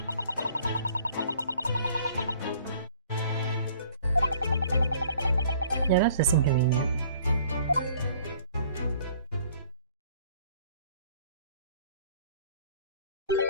Yeah, that's just inconvenient.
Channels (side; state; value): both; inverted; correlation -0.55